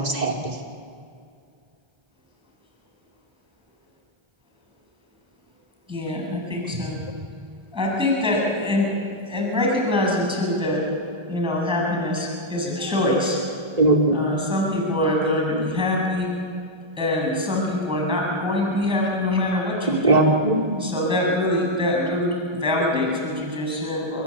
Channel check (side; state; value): left; late; 1.3 ms